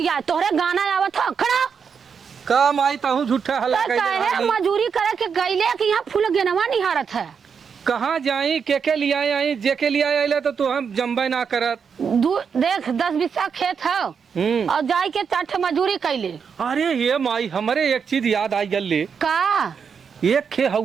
तोहरे गाना आवत ह खड़ा का माई ताहू झूठा हल्ला तो कहे मजूरी करे के गईले कि यहाँ फूल गेनवा निहारत है। कहाँ जाई के लिए आई जे के लिए आइले तो तू हम जम्बे ना करत। देख 10 बीसा खेत है और जाई के 4 मजूरी कैले। अरे ये माई हमारे एक चीज याद आई गल का एक खे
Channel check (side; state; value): left; quieter; 6.5 dB